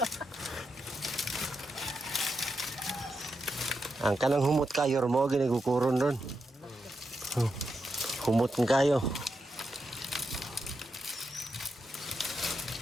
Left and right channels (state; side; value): normal; both; correlation 0.85